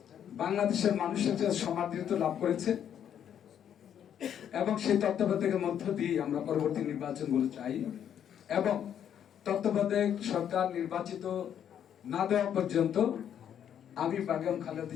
বাংলাদেশের মানুষের কাছে সমাদৃত লাভ করেছে এবং সেই তত্ত্বাবধায়কের মধ্য দিয়ে আমরা পরবর্তী নির্বাচনগুলো চাই এবং তত্ত্বাবধায়ক সরকার নির্বাচিত না দেওয়া পর্যন্ত আমি বেগম খালেদা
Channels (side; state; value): right; quieter; 9.3 dB